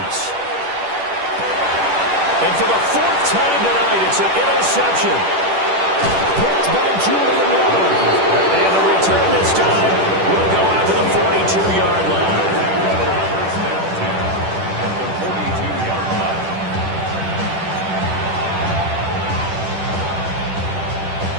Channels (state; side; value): late; left; 10 ms